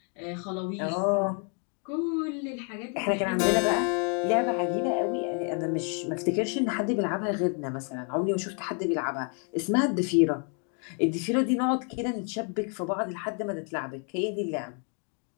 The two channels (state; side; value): quieter; right; 39.5 dB